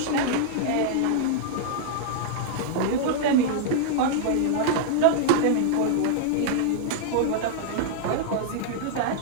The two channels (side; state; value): both; different; correlation -0.01